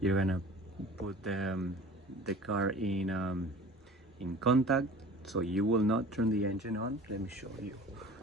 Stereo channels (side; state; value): both; normal; correlation 0.42